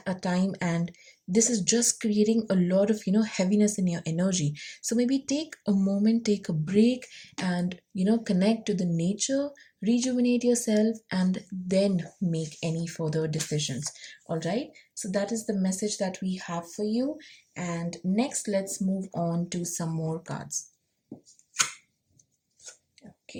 a time, and this is just creating a lot of heaviness in your energy. So maybe take a moment, take a break, and connect to the nature, rejuvenate yourself, and then make any further decisions. All right, so that is the message that we have for you. And next, let's move on to some more cards.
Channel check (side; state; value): both; identical; correlation 1.00